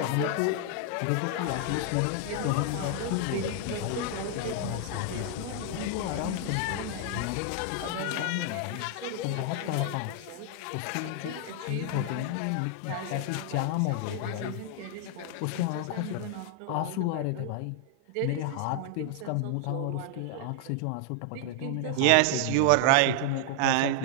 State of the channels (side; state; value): both; different; correlation 0.00